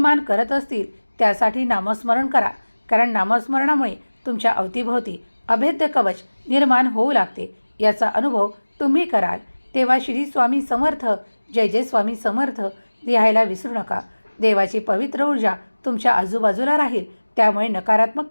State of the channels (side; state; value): both; inverted; correlation -1.00